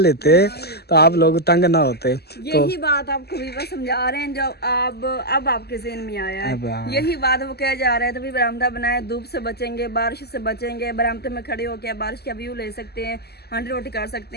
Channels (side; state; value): right; late; 0.47 ms